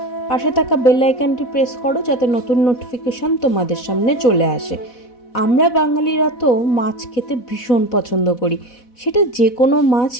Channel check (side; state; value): right; late; 4.1 ms